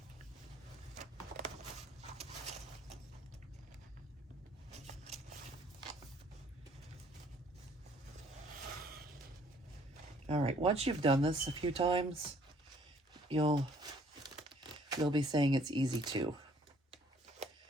All right, once you've done this a few times, you'll be saying it's easy too.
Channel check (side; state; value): both; normal; correlation 0.61